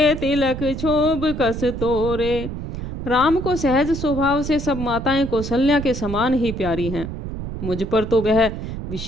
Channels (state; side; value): noise; right; rumble, 7 dB below the sound